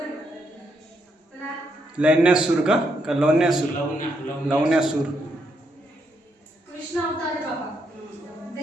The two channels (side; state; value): both; normal; correlation 0.77